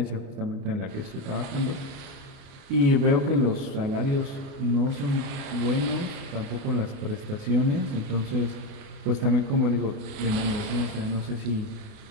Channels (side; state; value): left; late; 29 ms